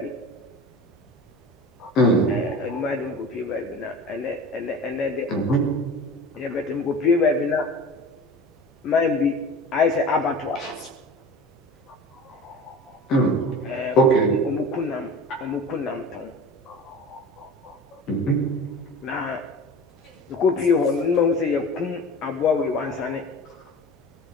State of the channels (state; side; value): normal; both; correlation 0.37